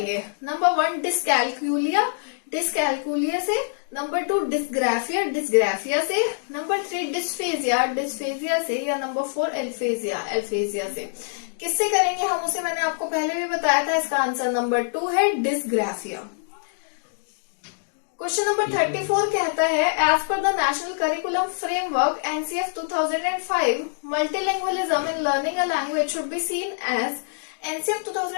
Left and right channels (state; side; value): silent; right; digital silence